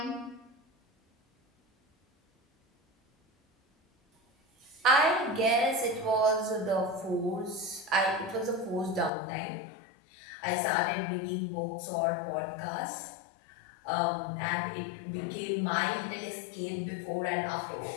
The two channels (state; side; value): drops out; right; at 9.1 s